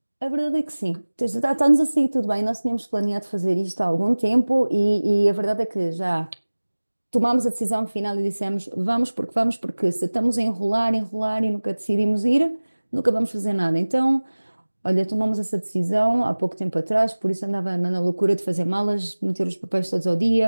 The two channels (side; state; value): both; inverted; correlation -1.00